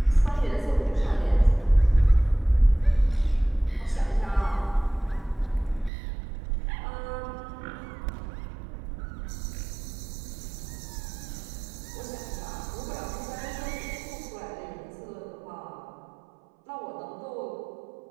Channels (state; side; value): drops out; left; at 5.9 s